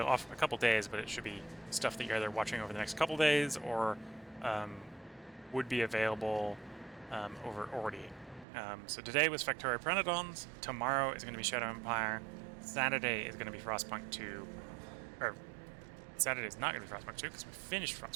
a couple days, but it should be stuff that you're either watching over the next couple days or would be available over already. So today was Factorio Pyanodons, tomorrow is going to be Shadow Empire, Saturday is going to be Frostpunk 2, or Saturday is not going to be Frostpunk 2 because we finished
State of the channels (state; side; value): drops out; left; at 8.5 s